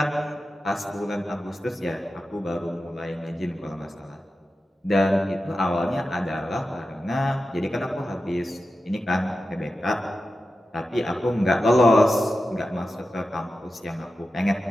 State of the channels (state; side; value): normal; both; correlation 0.92